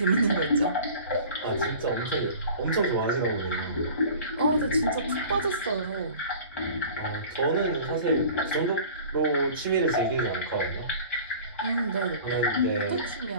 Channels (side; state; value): both; inverted; correlation -0.42